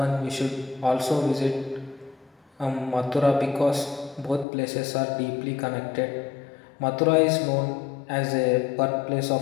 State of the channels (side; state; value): right; drops out; at 4.5 s